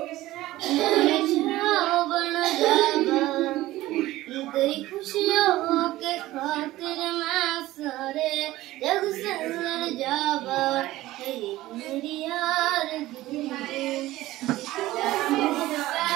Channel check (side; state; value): left; quieter; 16.6 dB